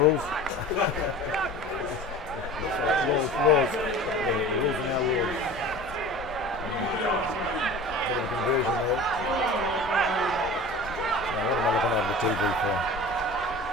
Rules. Yeah, the rules are now rules. Bit of a conversion there. Now, what am I looking over the TV for?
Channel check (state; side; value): normal; both; correlation 0.38